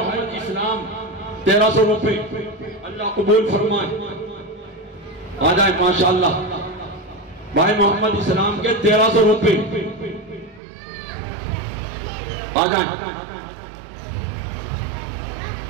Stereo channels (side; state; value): left; drops out; at 10.6 s